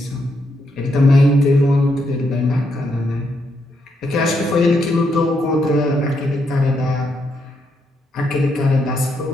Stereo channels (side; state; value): both; normal; correlation 0.79